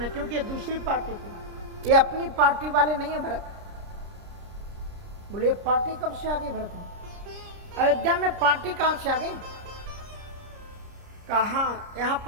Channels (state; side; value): late; left; 30 ms